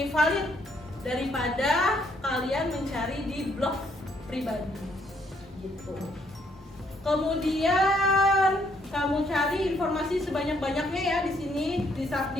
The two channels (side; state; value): both; normal; correlation 0.70